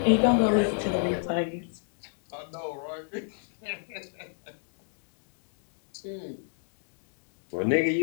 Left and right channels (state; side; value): silent; right; digital silence